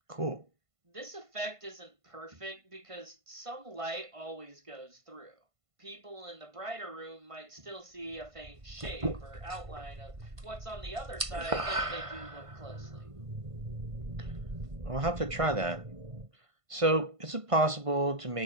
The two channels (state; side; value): late; left; 1.5 ms